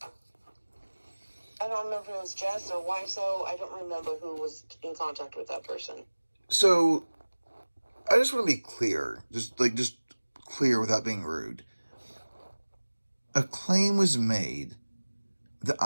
I don't remember if it was Jess or Wiso. I don't remember who was in contact with that person. So, I just want to be clear. Just clear without being rude. A claim was made that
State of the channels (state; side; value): inverted; both; correlation -1.00